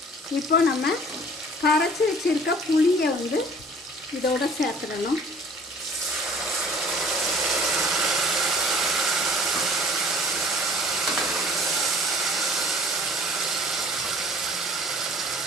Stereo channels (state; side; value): normal; both; correlation 0.50